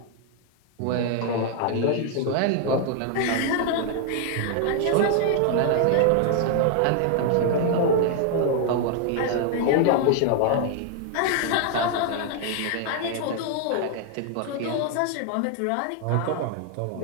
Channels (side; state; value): both; different; correlation 0.00